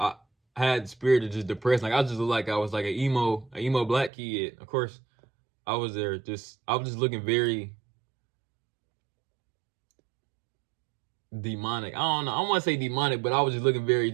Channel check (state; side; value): drops out; left; at 4.1 s